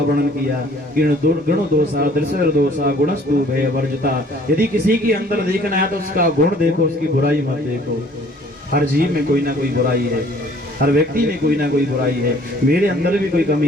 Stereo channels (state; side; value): normal; both; correlation 0.56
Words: किया। गुण दोषा, दृश्य दोषा, गुणस्तु भय वर्जता। यदि किसी के अंदर देखना है तो उसका गुण देखो, उसकी बुराई मत देखो। हर जीव में कोई ना कोई बुराई है, हर व्यक्ति में कोई ना कोई बुराई है। मेरे अंदर भी कोई